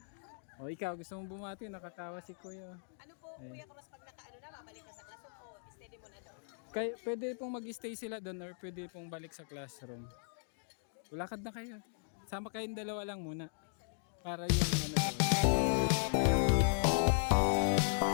O, ikaw. Gusto mong bumati? Nakatawa si Kuya. Ano po, Kuya Cross, pag nakaano na, babalik ka sa classroom o steady mo na doon? Pwede pong mag-stay sila doon or pwede pong balik sa classroom. Lakad na kayo. Sama kayong dalawa lang muna. Para yung ano doon.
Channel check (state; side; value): silent; right; digital silence